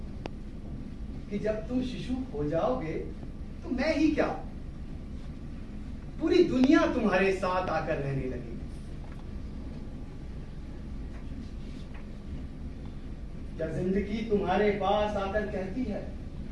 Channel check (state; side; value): identical; both; correlation 1.00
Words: कि जब तुम शिशु हो जाओगे तो मैं ही क्या, पूरी दुनिया तुम्हारे साथ आकर रहने लगेगी। क्या जिंदगी तुम्हारे पास आकर कहती है,